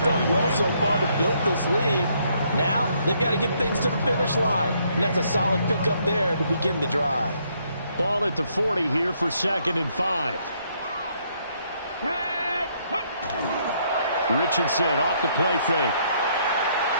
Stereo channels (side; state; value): both; inverted; correlation -0.70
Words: done well so far to build this lead. Now they've got to get things to the finish line, and that's a solid pickup there to begin the drive. Ball at the 40 here for 2nd and 5. Richardson off the play fake.